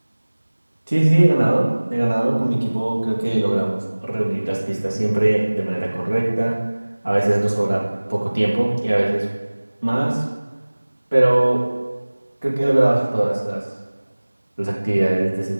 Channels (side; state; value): both; inverted; correlation -1.00